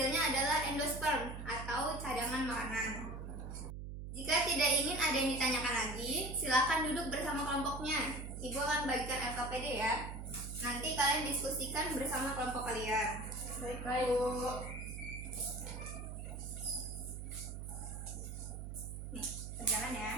adalah endosperm atau cadangan makanan. Jika tidak ingin ada yang ditanyakan lagi, silakan duduk bersama kelompoknya. Ibu akan bagikan LKPD ya. Nanti kalian diskusikan bersama kelompok kalian. Baik, Baik, Bu. Nih, berjalan ya.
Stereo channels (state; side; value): noise; right; hum, 8 dB below the sound